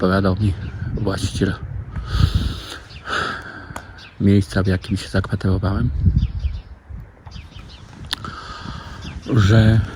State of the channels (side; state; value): both; identical; correlation 1.00